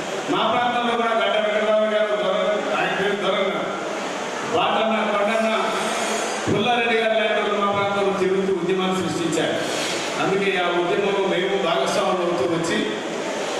మా ప్రాంతంలో కూడా గడ్డ వెంకటరావు గారు ఆయన పేరు దొరన్న వాటన్న కొండన్న పుల్లారెడ్డి గారు లాంటి మా ప్రాంతంలో తిరుగుతూ ఉద్యమాన్ని సృష్టించారు. అందుకే ఆ ఉద్యమంలో మేము భాగస్వాములు అవుతూ వచ్చి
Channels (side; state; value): both; identical; correlation 1.00